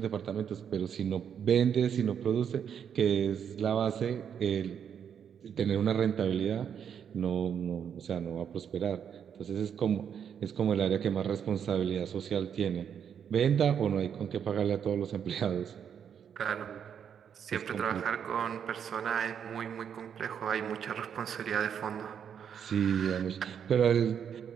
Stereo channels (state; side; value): quieter; left; 8.1 dB